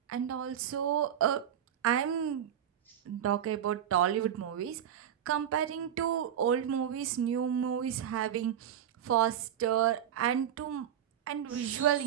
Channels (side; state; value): left; quieter; 9.8 dB